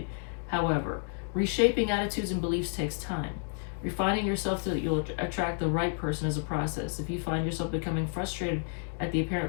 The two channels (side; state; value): right; silent; digital silence